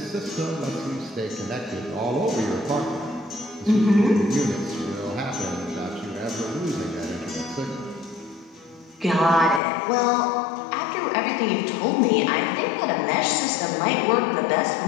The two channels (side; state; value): right; drops out; at 9.6 s